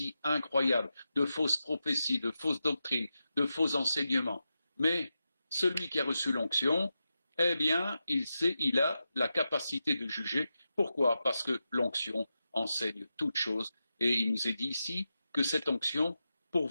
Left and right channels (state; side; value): inverted; both; correlation -0.90